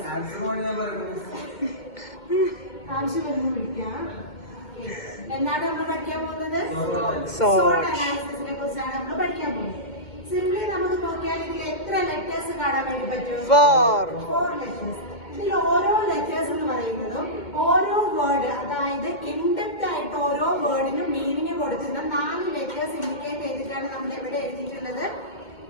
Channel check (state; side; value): late; right; 2.1 ms